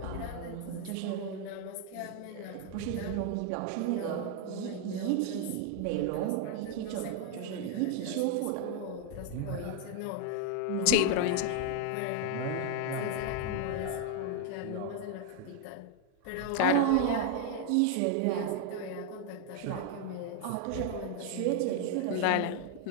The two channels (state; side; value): different; both; correlation 0.00